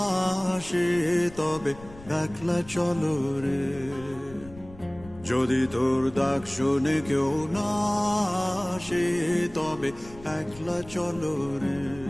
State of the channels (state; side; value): noise; left; rumble, 19 dB below the sound